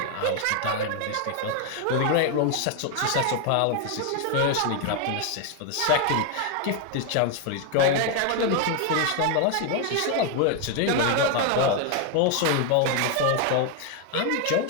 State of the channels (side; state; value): both; different; correlation 0.01